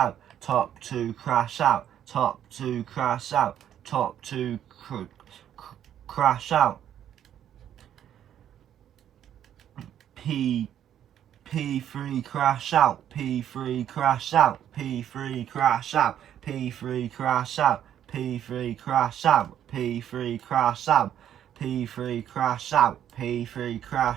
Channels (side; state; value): left; quieter; 10.3 dB